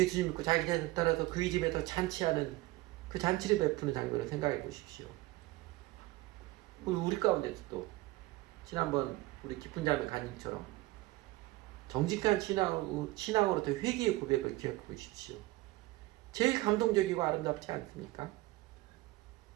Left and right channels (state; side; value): quieter; left; 19.5 dB